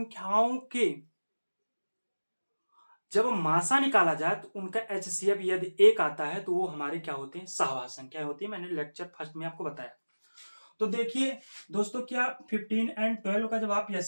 के जब मासा निकाला जाए तो उनका एचसीएफ यदि 1 आता है तो वो हमारे क्या होते हैं, सहआभाज्य संख्या होती है। मैंने लेक्चर फर्स्ट में आपको बताया। तो देखिए दोस्तों क्या 15 और 12 का जब आप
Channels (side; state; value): both; inverted; correlation -1.00